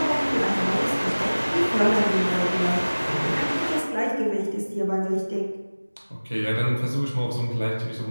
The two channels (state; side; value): inverted; both; correlation -1.00